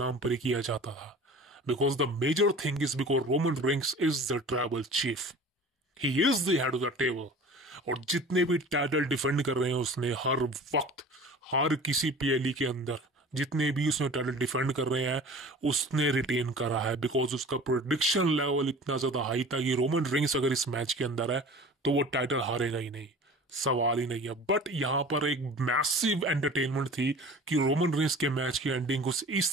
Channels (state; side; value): normal; both; correlation 0.41